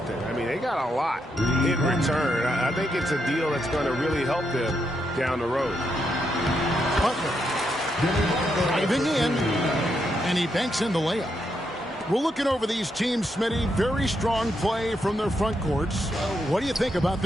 I mean, they got a lot in return. I think it's a deal that's going to really help them down the road. Butler driving in, and he banks in the layup. We're looking over these teams, Smitty. Very strong play from their front courts. What do you think about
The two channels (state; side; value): normal; both; correlation 0.80